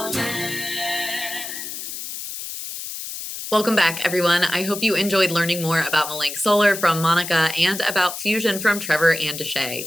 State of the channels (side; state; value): left; noise; hiss, 8 dB below the sound